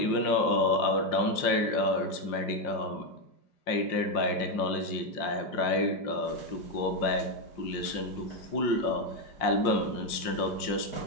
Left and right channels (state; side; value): late; right; 5.6 ms